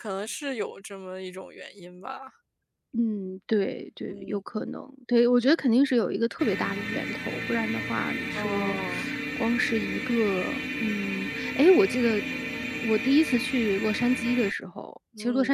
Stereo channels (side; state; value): both; identical; correlation 1.00